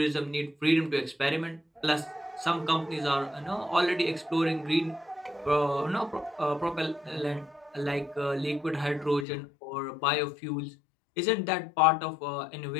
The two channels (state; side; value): drops out; right; at 9.2 s